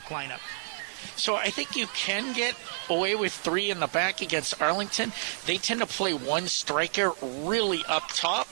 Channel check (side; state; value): left; silent; 59 dB below the other